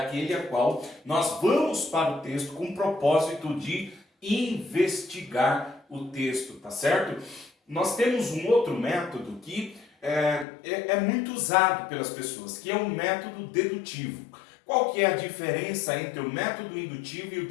a qual nós vamos para o texto com o propósito de investigar o texto, tá certo? Nós temos um outro método que é muito usado pelas pessoas, que é um método dedutivo. Qual que é a diferença entre o método indutivo e o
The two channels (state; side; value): drops out; right; at 10.5 s